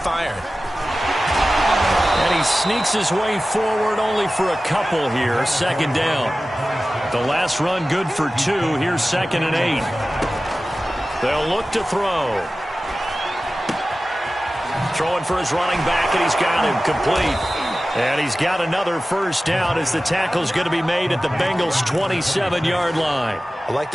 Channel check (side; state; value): both; normal; correlation 0.96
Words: And he sneaks his way forward only for a couple here. 2nd down. The last run good for 2. Here's 2nd and 8. They'll look to throw. Throwing for his running back, and he's got him complete. And he's got another 1st down as the tackle's going to be made at the Bengals' 27-yard line. I like